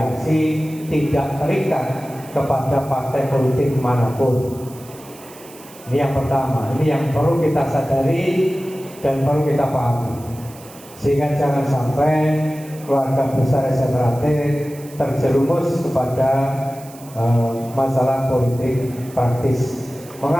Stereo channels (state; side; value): noise; right; hiss, 21 dB below the sound